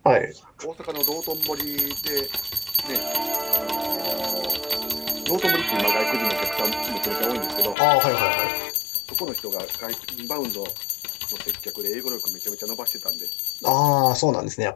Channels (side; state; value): right; drops out; at 7.8 s